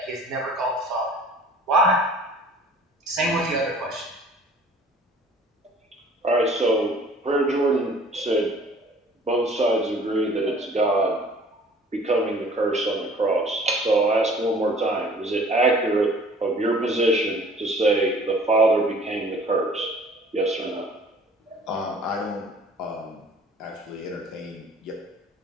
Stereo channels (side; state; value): both; normal; correlation 0.51